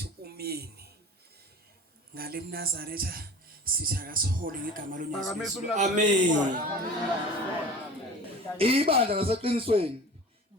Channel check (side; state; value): both; normal; correlation 0.39